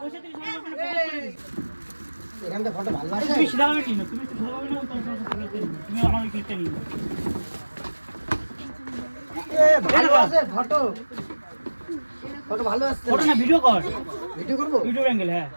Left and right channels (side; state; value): both; inverted; correlation -1.00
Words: এখানটা ফটো ভালো আছে। তুমি সিধা ভাবে কিনো, তুমি সিধা ভাবে না, তুমি আমার ক্লিকটা নিও। ভালো আছে ফটো ভালো আসছে। ফটো না ভিডিও কর, ভিডিও করবো? Video angle. হ্যাঁ